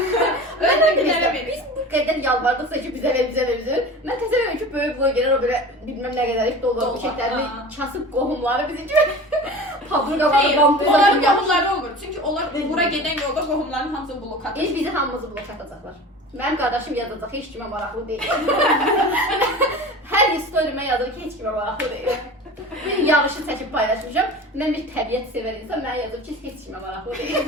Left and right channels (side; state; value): both; normal; correlation 0.36